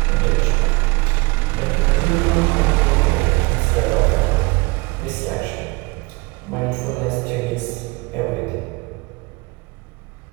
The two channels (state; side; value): quieter; left; 26.0 dB